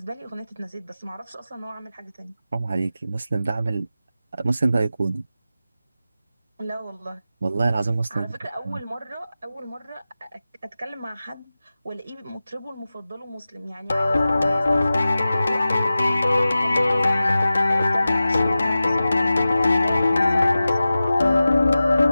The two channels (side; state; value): both; inverted; correlation -0.95